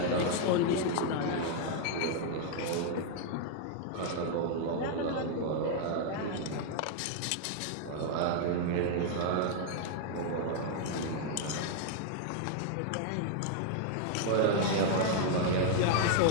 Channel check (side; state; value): both; different; correlation 0.00